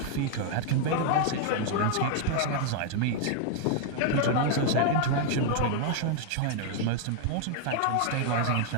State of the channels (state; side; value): different; both; correlation 0.00